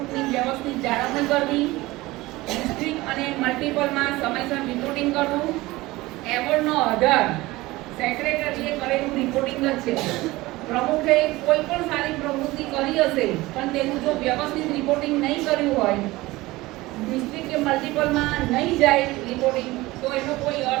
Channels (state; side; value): quieter; left; 19.7 dB